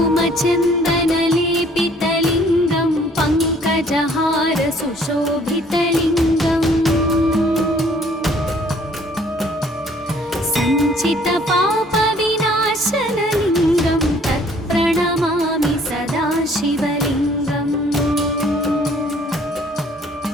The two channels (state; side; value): normal; both; correlation 0.59